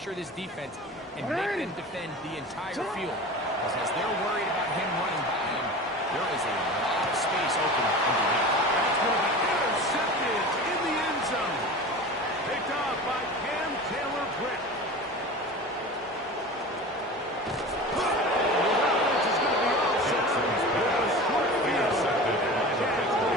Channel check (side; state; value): both; normal; correlation 0.34